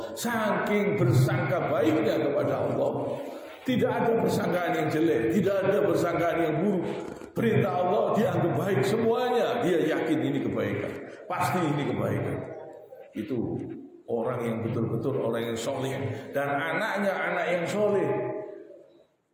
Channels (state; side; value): identical; both; correlation 1.00